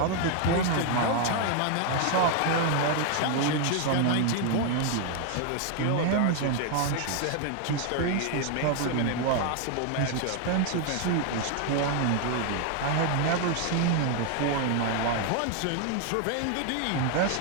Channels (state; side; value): different; both; correlation 0.00